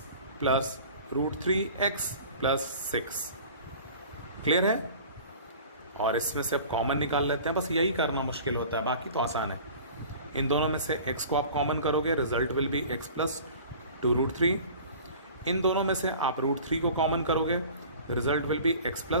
plus root 3 x plus 6. Clear है. और इसमें से अब कॉमन निकाल लेते हैं. बस यही करना मुश्किल होता है, बाकी तो आसान है. इन दोनों में से x को आप कॉमन करोगे, result will be x plus 2 root 3. इन दोनों में से आप रूट 3 को कॉमन करोगे, result will be x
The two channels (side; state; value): both; inverted; correlation -0.43